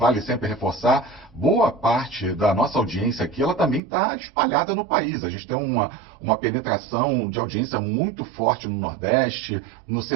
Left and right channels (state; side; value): drops out; left; at 3.8 s